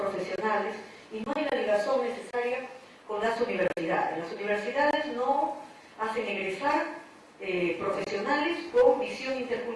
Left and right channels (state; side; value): identical; both; correlation 1.00